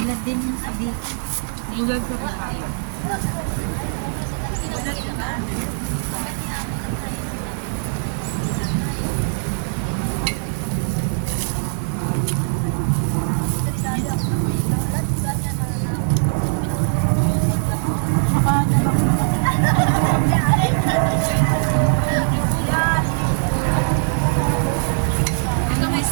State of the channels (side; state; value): left; silent; 65 dB below the other